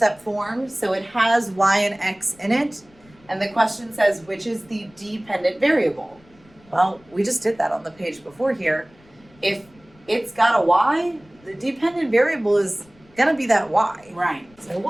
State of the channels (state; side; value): noise; left; rumble, 28 dB below the sound